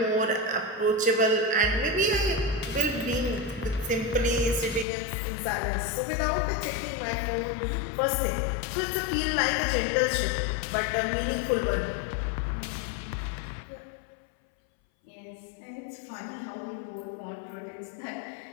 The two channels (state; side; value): drops out; right; at 4.9 s